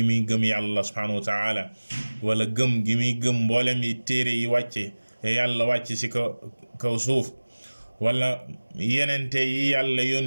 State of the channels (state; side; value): inverted; both; correlation -1.00